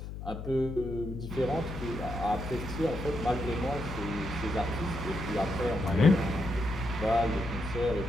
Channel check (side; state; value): left; noise; hum, 8 dB below the sound